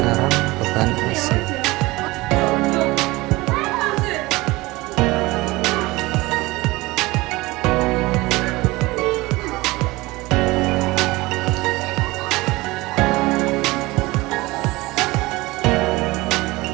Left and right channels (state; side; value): quieter; left; 21.1 dB